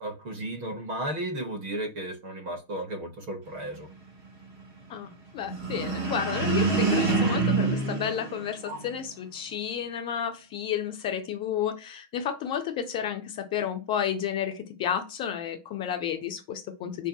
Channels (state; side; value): late; left; 6.4 ms